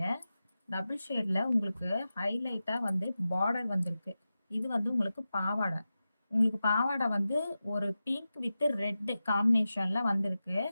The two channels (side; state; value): both; inverted; correlation -0.93